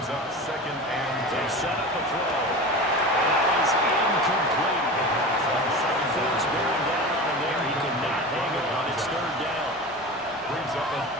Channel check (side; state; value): both; normal; correlation 0.31